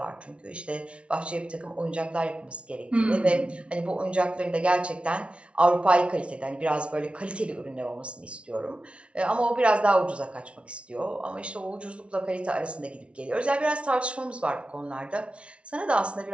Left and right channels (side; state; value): left; late; 0.060 ms